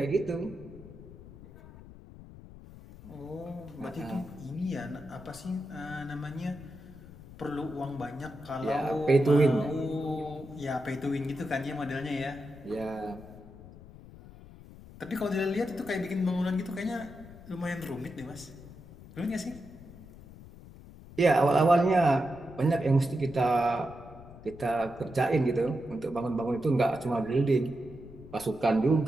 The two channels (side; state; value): left; noise; rumble, 18 dB below the sound